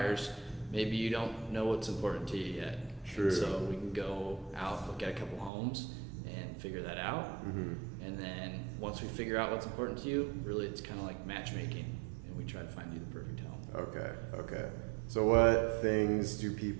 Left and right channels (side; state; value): left; drops out; at 5.5 s